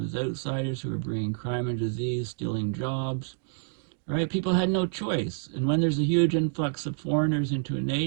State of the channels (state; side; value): silent; left; digital silence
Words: as outsiders who are bringing crime and disease, stealing jobs. Right? People had no choice. And when there's a huge influx of foreigners into a